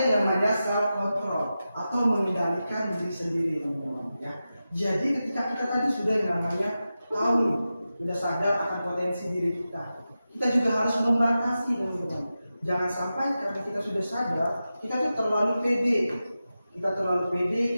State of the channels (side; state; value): both; inverted; correlation -0.92